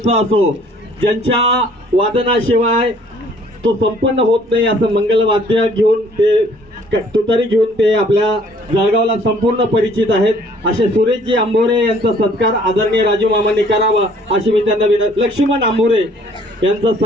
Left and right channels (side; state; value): both; normal; correlation 0.58